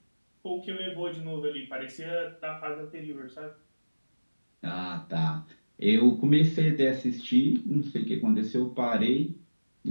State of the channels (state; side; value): inverted; both; correlation -1.00